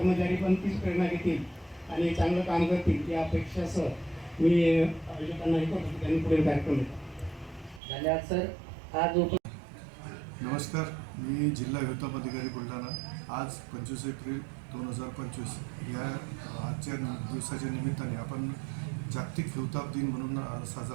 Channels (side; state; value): left; drops out; at 7.8 s